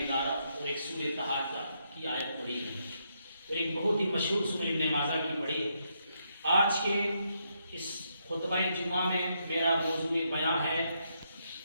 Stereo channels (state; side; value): inverted; both; correlation -0.78